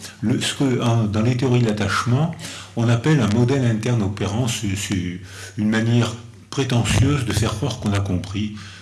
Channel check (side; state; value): both; identical; correlation 1.00